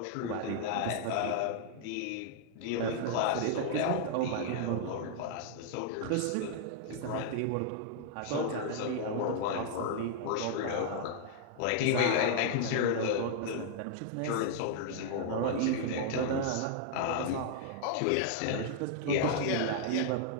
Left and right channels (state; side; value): different; both; correlation -0.01